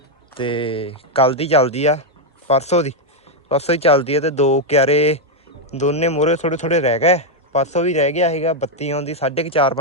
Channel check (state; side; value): normal; both; correlation 0.01